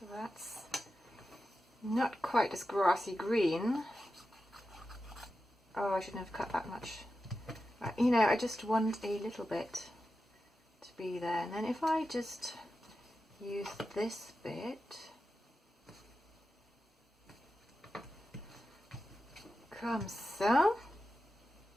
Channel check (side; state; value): both; normal; correlation 0.91